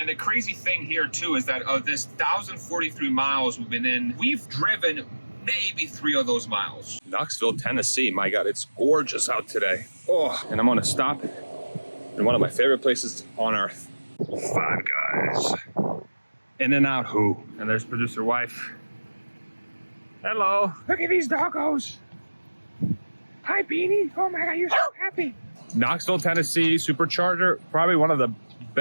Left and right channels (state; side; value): inverted; both; correlation -1.00